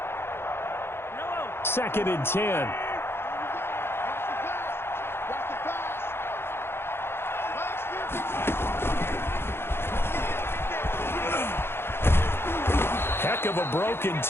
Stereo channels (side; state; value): right; late; 0.11 ms